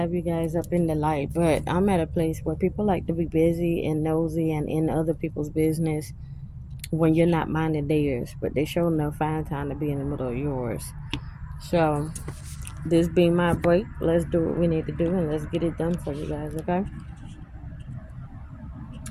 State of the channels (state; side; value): identical; both; correlation 1.00